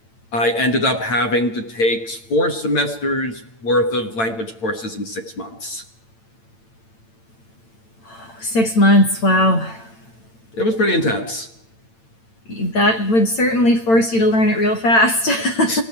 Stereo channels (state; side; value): late; right; 8.9 ms